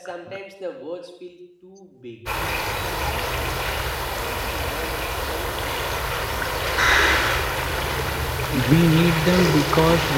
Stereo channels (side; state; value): both; identical; correlation 1.00